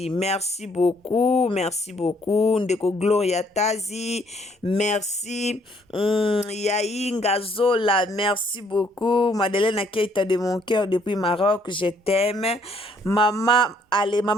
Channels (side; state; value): both; normal; correlation 0.66